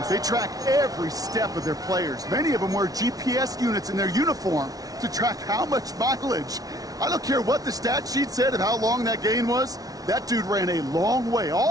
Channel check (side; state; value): left; late; 0.18 ms